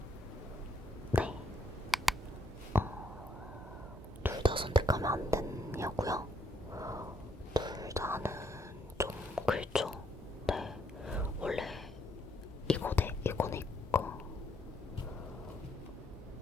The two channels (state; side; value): normal; both; correlation 0.73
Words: 네. 둘 다 선택하면 안 되냐고요? 둘 다는 좀 그렇죠. 네. 원래 이거네 이거.